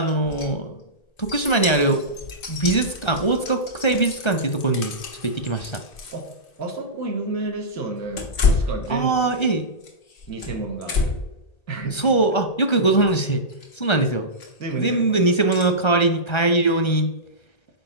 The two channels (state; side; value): late; right; 1.3 ms